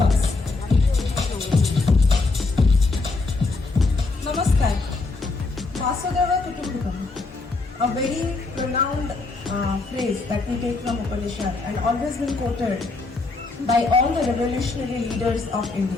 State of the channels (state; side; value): quieter; right; 3.6 dB